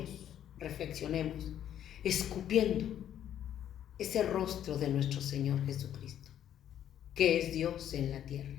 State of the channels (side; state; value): right; quieter; 10.5 dB